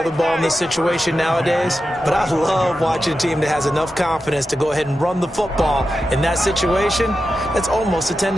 the ball in this situation nowadays, but I love watching a team that has enough confidence to go ahead and run the football. In that situation, that's almost a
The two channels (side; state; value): both; normal; correlation 0.91